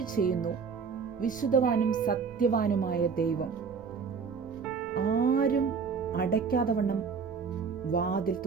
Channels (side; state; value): left; quieter; 5.8 dB